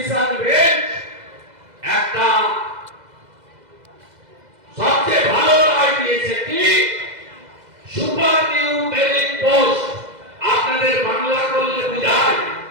বেঞ্চ একটা সবচেয়ে ভালো রায় দিয়েছে কি, সুপার নিউমেরিক পোস্ট, আপনাদের বাংলা করলে বুঝায়,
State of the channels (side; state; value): left; late; 2.0 ms